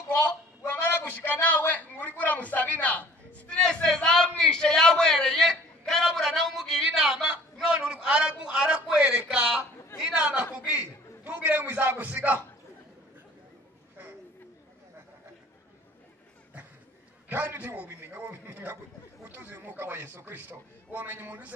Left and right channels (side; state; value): both; normal; correlation 0.51